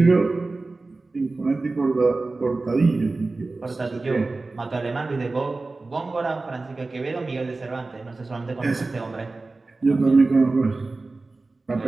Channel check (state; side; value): quieter; left; 3.5 dB